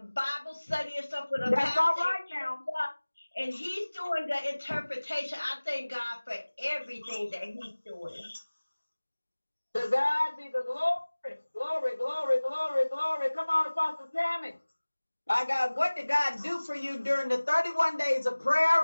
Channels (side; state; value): both; inverted; correlation -1.00